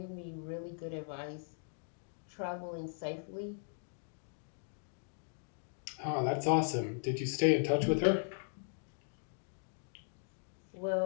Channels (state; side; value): silent; right; digital silence